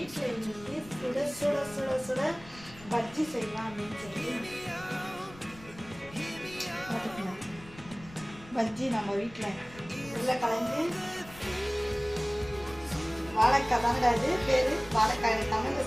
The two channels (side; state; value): left; noise; rumble, 19 dB below the sound